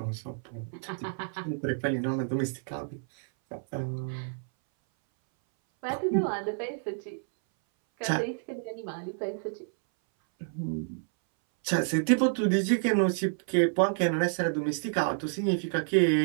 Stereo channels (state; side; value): silent; left; 58 dB below the other